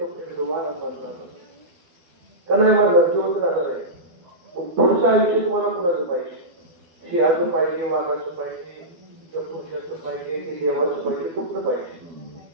फिर दोबारा मरना का नाही मरणार जीवन राहणार आहे पुढचं आयुष्य तुम्हाला कुणाचं पाहिजे सिंहाचं पाहिजे वाघाचं पाहिजे किंवा पुरुषाचं पाहिजे की देवाचं पाहिजे कुठलं पाहिजे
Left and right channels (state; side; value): late; left; 12 ms